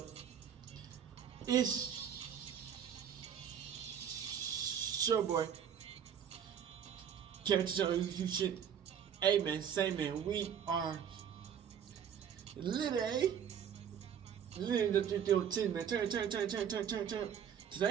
It's your boy Kevin to turn on YouTube shit. Hey man, say man, we are literally the 310 man. Turn.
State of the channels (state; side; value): quieter; left; 8.5 dB